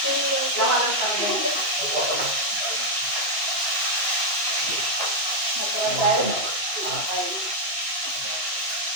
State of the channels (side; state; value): left; late; 2.5 ms